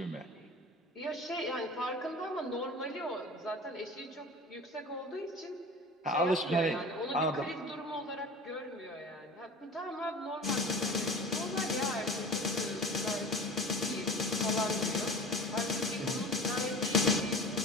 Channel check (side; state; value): both; normal; correlation 0.37